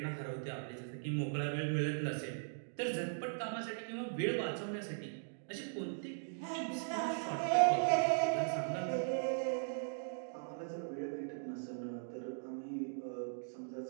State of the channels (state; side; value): silent; left; digital silence